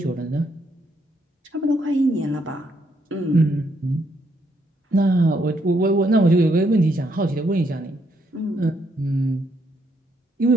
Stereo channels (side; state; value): both; normal; correlation 0.74